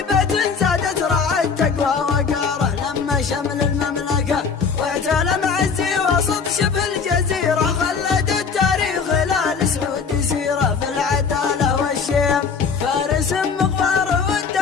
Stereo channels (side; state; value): right; quieter; 5.7 dB